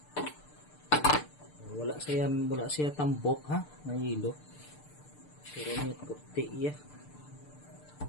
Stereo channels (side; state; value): right; late; 6.7 ms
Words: Wala siya tambok ha, na yelo. Pero may puti ya.